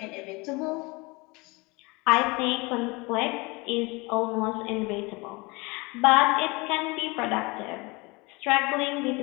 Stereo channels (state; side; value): quieter; right; 25.9 dB